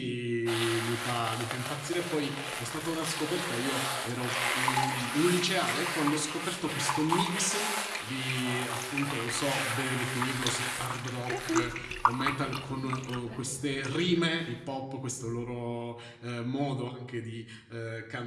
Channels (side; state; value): both; identical; correlation 1.00